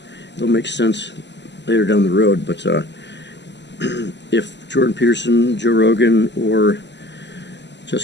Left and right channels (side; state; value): right; late; 0.51 ms